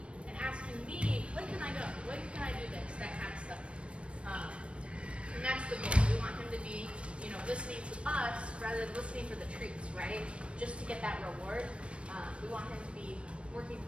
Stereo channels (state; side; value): late; left; 0.060 ms